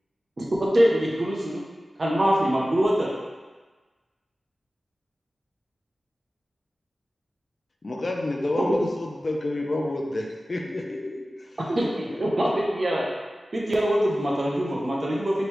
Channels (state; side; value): normal; both; correlation 0.96